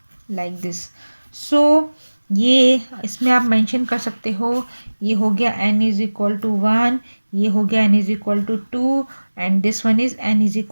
लाइक दिस। सो ये इसमें आप मेंशन कर सकते हो, ये हो गया n इज इक्वल टू 1, ये हो गया n is equal to 2, and this one is n is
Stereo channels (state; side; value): inverted; both; correlation -1.00